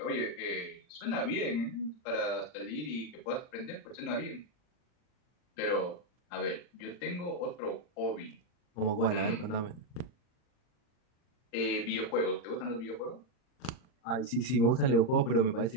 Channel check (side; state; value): right; late; 39 ms